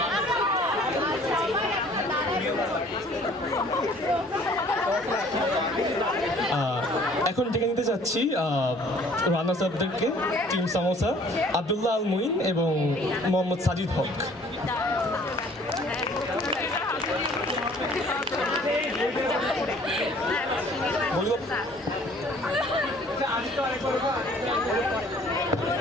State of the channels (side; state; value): both; normal; correlation 0.55